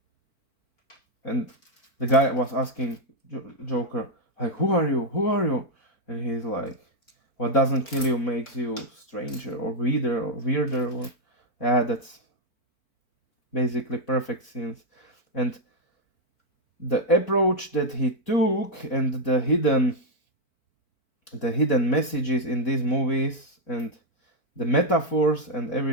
and the guy was asking Joker, like, who are you? Who are you? And he's like, what doesn't kill you makes you stranger or weirder or yeah, that's basically perfect scenes. And the approach that he took, and the hidden messages in these movies, and the metaphors and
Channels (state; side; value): late; right; 4.5 ms